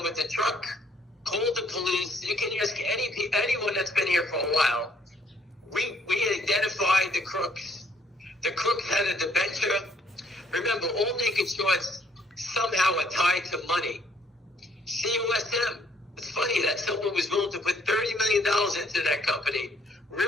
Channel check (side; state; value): both; normal; correlation 0.66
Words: with the truck, call the police. You can ask anyone that's been here for a while. We identified the crooks. The crooks had a debenture. Remember, all naked shorts somehow are tied to money. COSM. It's funny that someone was willing to put $30 million into that company